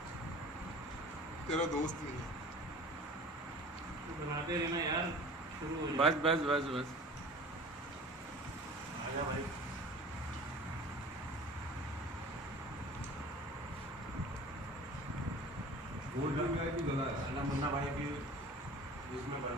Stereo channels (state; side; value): normal; both; correlation 0.42